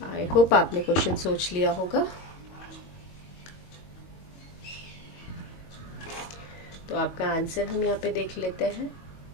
आई होप आपने क्वेश्चन सोच लिया होगा। तो आपका आंसर हम यहाँ पे देख लेते हैं।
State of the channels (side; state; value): right; late; 22 ms